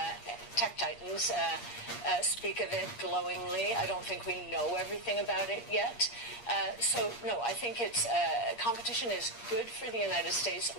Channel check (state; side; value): late; right; 8.5 ms